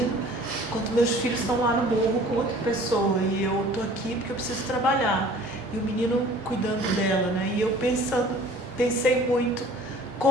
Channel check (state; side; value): normal; both; correlation 0.49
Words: enquanto meus filhos estão lá no morro com outra pessoa, e eu estou aqui porque eu preciso trabalhar. E o menino cuidando dela, né? E eu pensei muito